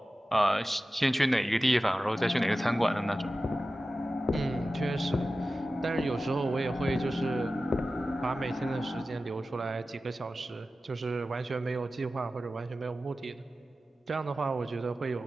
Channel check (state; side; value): normal; both; correlation 0.94